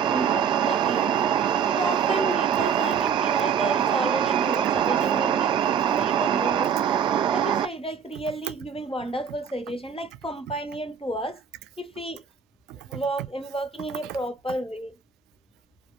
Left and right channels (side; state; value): left; quieter; 7.0 dB